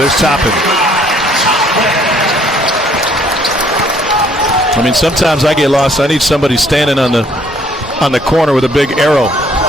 There's Toppin. I mean, sometimes I get lost. I need somebody standing on the corner with a big arrow.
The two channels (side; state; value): both; normal; correlation 0.63